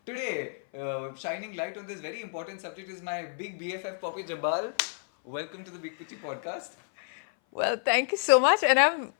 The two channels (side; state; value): right; silent; 56 dB below the other